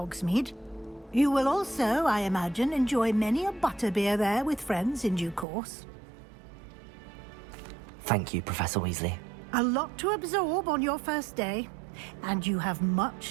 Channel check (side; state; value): left; drops out; at 5.5 s